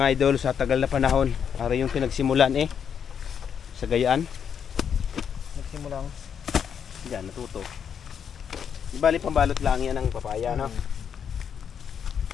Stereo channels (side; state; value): right; quieter; 7.7 dB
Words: idol sa tagal na panahon. Para yung pinagsimulan sa Gayaan. Nagsimulang diyan natuto. Ibali pambalot lang yan ng papaya, no?